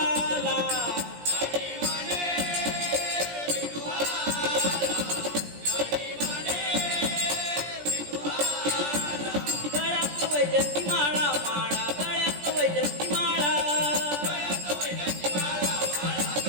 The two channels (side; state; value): left; late; 17 ms